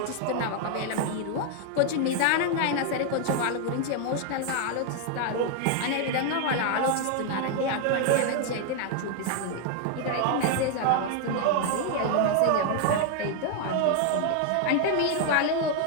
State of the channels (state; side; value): different; both; correlation 0.00